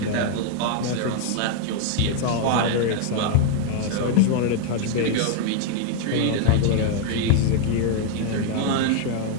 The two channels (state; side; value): different; both; correlation 0.00